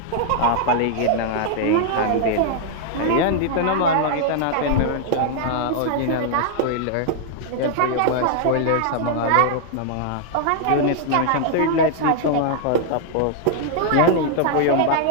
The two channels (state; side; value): different; both; correlation -0.01